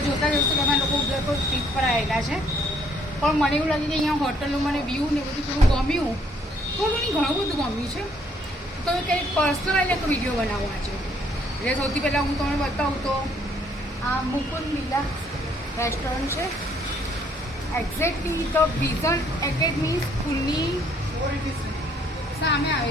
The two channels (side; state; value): both; normal; correlation 0.65